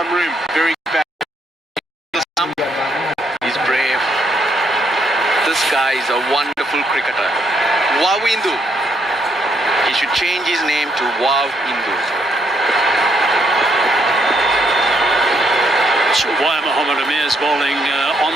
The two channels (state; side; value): normal; both; correlation 0.73